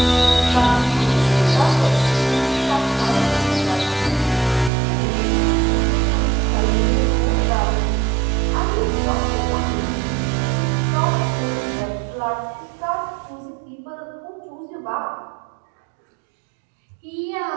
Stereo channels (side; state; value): left; drops out; at 4.7 s